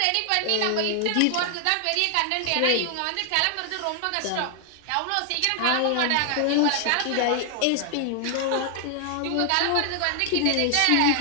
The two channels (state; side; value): different; both; correlation 0.00